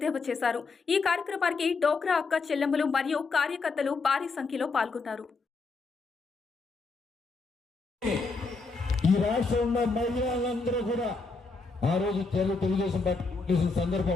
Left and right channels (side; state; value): right; quieter; 4.1 dB